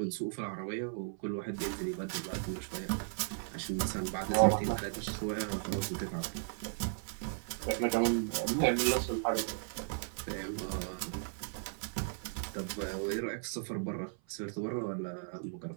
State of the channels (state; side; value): silent; left; 54 dB below the other